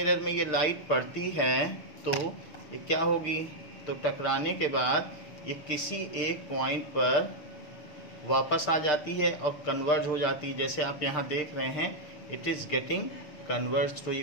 में ये लाइट पड़ती है तो ये क्या होगी, तो टकराने के बाद ये किसी एक पॉइंट पर वापस आ जाती है और कन्वर्ज हो जाती है, जैसे आप यहाँ देख रहे हैं इट इज़ गेटिंग कन्वर्ज, तो ये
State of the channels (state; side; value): late; right; 6.6 ms